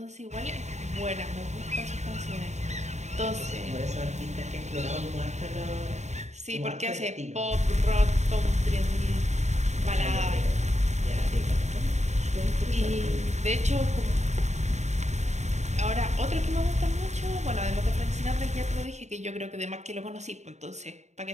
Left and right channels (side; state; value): left; late; 0.33 ms